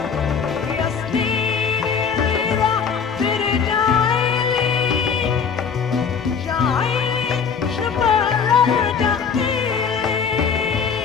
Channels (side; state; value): right; quieter; 6.5 dB